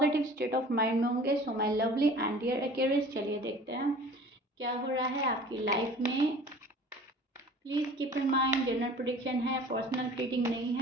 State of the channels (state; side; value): normal; both; correlation 0.45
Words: state of mind में होंगे। So my lovely and dear Aquarius, चलिए देखते हैं क्या हो रहा है आपकी लाइफ में। Please keep in mind general prediction है, पर्सनल रीडिंग नहीं